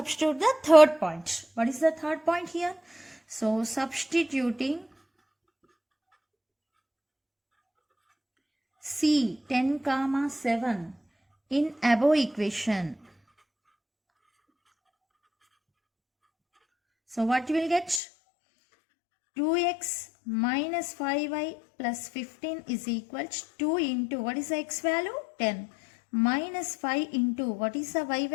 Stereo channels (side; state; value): right; drops out; at 18.0 s